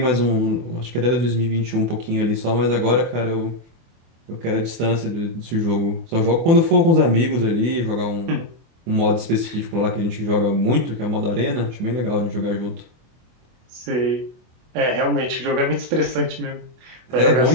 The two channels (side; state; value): left; late; 24 ms